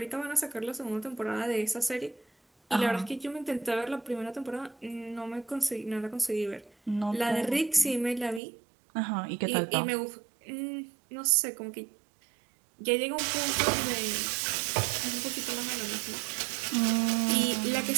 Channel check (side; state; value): left; drops out; at 8.4 s